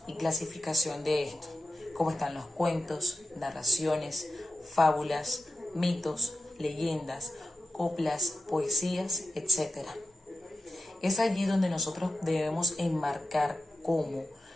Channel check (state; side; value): normal; both; correlation 0.93